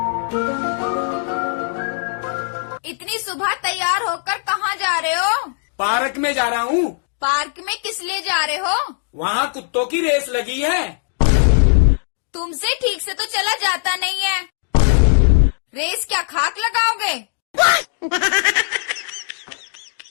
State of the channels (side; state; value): right; silent; digital silence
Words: इतनी सुबह तैयार होकर कहाँ जा रहे हो? पार्क में जा रहा हूँ। पार्क में किस लिए जा रहे हो? वहाँ कुत्तों की रेस लगी है। तुमसे ठीक से तो चला जाता नहीं है। रेस क्या खाक लगाओगे?